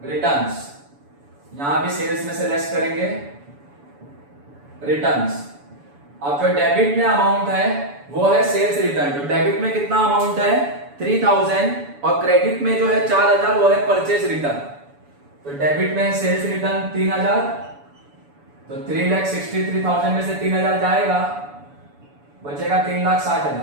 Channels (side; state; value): left; late; 7.0 ms